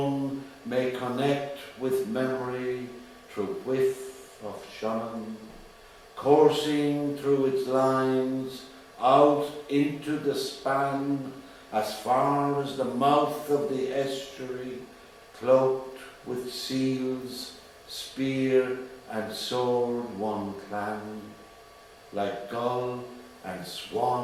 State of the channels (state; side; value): identical; both; correlation 1.00